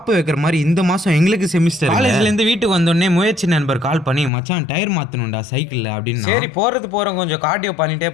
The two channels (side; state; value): right; drops out; at 4.3 s